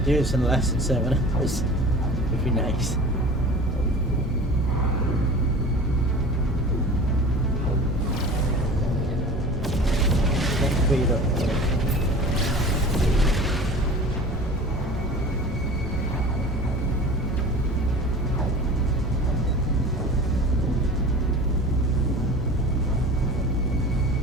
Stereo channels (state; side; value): normal; both; correlation 0.39